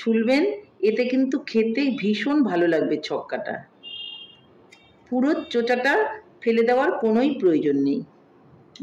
এতে কিন্তু খেতে ভীষণ ভালো লাগবে ছক্কাটা। পুরো চোচাটা ফেলে দেওয়ার কোনোই প্রয়োজন নেই।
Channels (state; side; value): identical; both; correlation 1.00